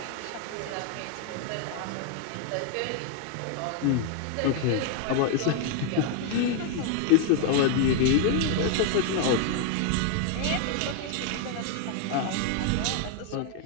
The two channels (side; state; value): both; different; correlation 0.00